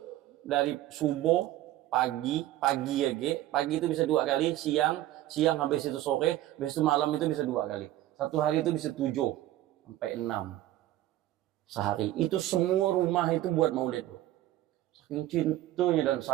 dari subuh, pagi itu bisa 2 kali, siang habis itu sore, habis itu malam itu bisa 2 kali. Satu hari itu bisa 7 sampai 6 sehari. Itu semua rumah itu buat maulid. Saking cintanya dan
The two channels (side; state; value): left; quieter; 14.6 dB